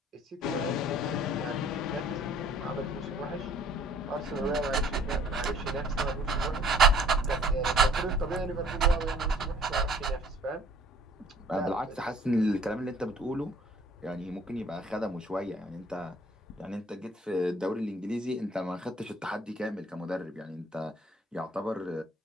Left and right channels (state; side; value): normal; both; correlation 0.56